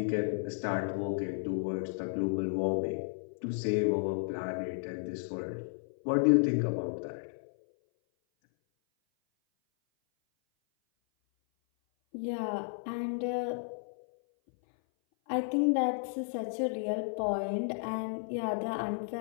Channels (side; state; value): right; silent; 56 dB below the other